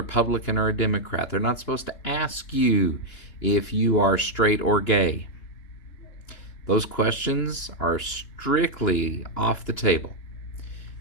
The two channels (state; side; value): late; right; 2.9 ms